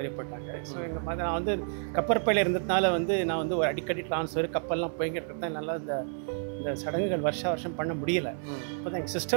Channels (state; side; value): silent; left; 58 dB below the other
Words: போயிட்டாங்க. ஸோ எங்கள் மதர் நான் வந்து கப்பற்பையில் இருந்ததுனால வந்து நான் வந்து ஒரு அடிக்கடி ட்ரான்ஸ்ஃபர் கப்பல்லாம் போய்கிட்டு நல்லா இந்த சடங்குகள் வருஷம் பண்ண முடியலை. இப்போ தான் எங்கள்